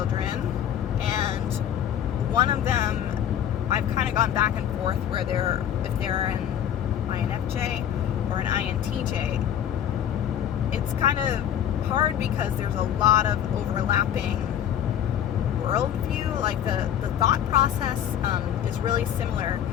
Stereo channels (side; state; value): right; quieter; 10.0 dB